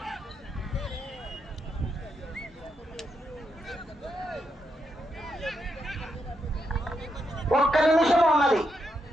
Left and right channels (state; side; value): normal; both; correlation 0.82